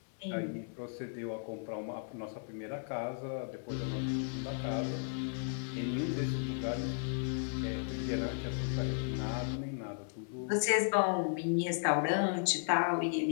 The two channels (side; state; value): right; silent; digital silence